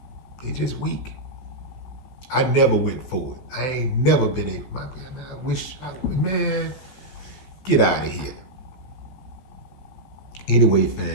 They just weak. I never went for it. I ain't never been a, man, get out of here. Anyway,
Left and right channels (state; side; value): late; right; 16 ms